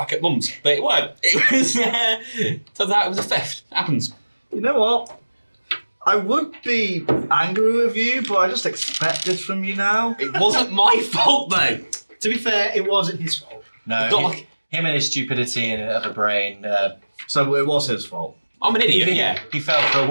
at Mum's, but it weren't. It was turns out it was a theft. It happens. You know what? I would be angry with you, but I just expect this from you now. It wasn't my fault though. To be fair, it wasn't his fault. No, It's not like him and his stupidity and of a brain. So it was his fault. I'm an idiot. Yeah. He fell for a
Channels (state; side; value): inverted; both; correlation -1.00